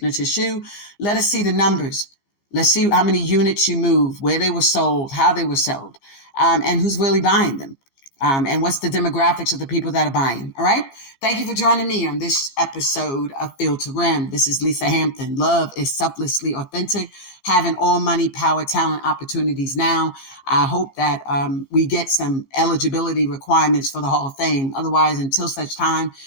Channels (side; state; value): right; late; 15 ms